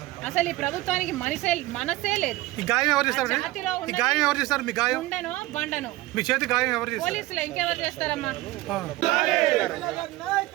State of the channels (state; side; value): quieter; left; 18.4 dB